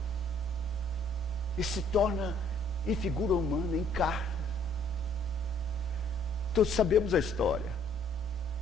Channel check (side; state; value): both; normal; correlation 0.62